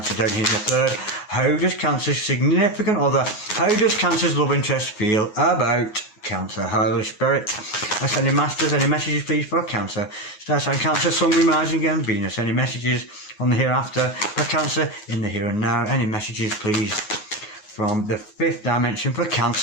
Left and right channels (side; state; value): right; late; 9.5 ms